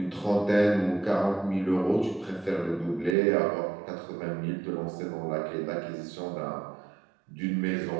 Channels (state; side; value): drops out; left; at 3.2 s